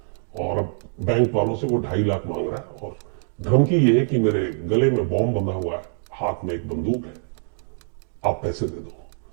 और अब बैंक वालों से वो $2.5 लाख मांग रहा है और धमकी ये है कि मेरे गले में बॉम्ब बंधा हुआ है, हाथ में एक बंदूक है, आप पैसे दे दो।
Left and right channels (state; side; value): silent; left; digital silence